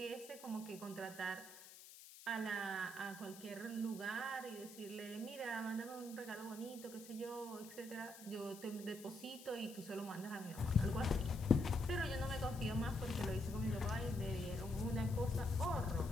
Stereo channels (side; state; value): left; noise; hiss, 16 dB below the sound